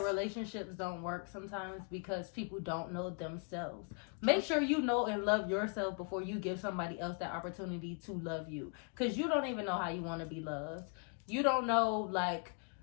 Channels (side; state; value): right; quieter; 38.5 dB